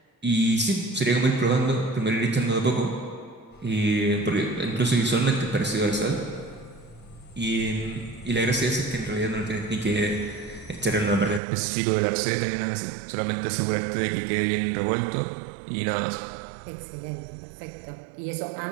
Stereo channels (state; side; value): drops out; left; at 11.4 s